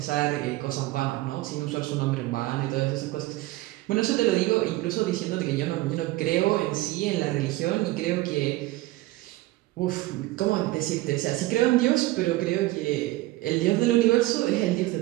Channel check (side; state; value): left; quieter; 18.3 dB